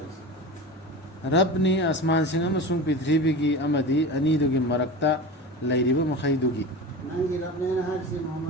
रब ने आसमान सिंह अमसुंग पृथ्वी की अमदी अनीदुगी मरक्ता लैरिब मखैदुगी नंगी रब ने हासी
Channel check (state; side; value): normal; both; correlation 0.30